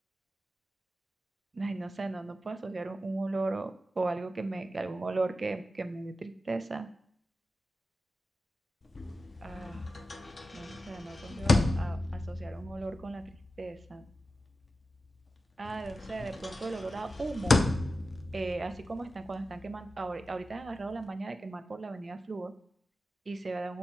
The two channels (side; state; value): both; normal; correlation 0.92